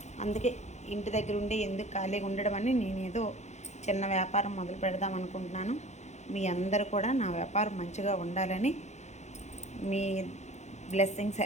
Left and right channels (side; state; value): right; late; 0.33 ms